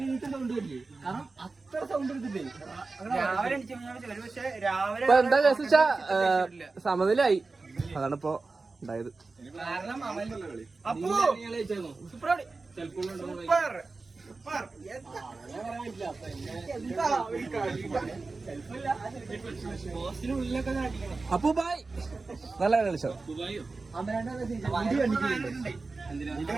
എണീറ്റ സൗണ്ട് വരില്ലേ? കാരണം അത്ര സൗണ്ട് എടുത്തിട്ടേ രാവിലെ എണീച്ച പക്ഷെ രാവിലെ ഇപ്പൊ എന്താ കേസ് വെച്ചാ സമനിലായി. അതാണ് ഇപ്പൊ ഉണ്ടായത്. കാരണം അപ്പോ സൂപ്പർ സൂപ്പർ അപ്പു ബായ് നല്ല കളിച്ചോ.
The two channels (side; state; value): left; quieter; 3.8 dB